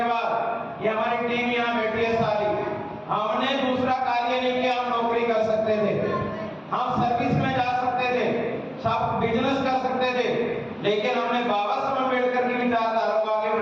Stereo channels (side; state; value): both; identical; correlation 1.00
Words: बाद, ये हमारी टीम यहाँ बैठी है सारी, हमने दूसरा कार्य नहीं किया। हम नौकरी कर सकते थे, हम सर्विस में जा सकते थे, सब बिजनेस कर सकते थे, लेकिन हमने बाबा साहब अम्बेडकर की विचारधारा को आगे